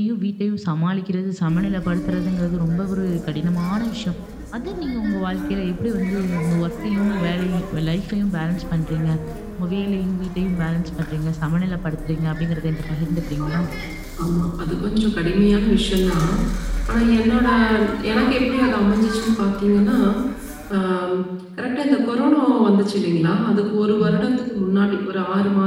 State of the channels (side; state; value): both; identical; correlation 1.00